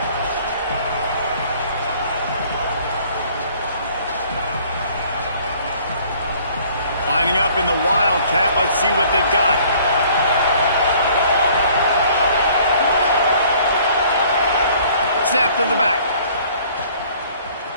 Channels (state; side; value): inverted; both; correlation -0.56